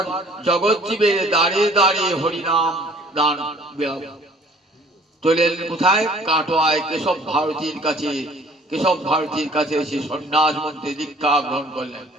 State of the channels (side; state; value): both; normal; correlation 0.54